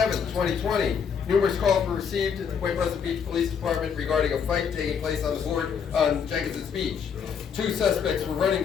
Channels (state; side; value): quieter; right; 6.9 dB